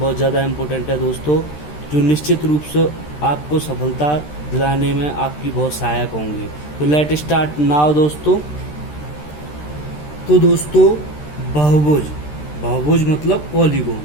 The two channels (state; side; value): late; right; 13 ms